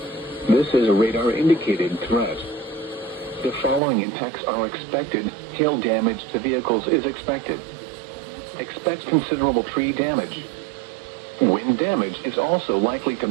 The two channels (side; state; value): left; drops out; at 3.8 s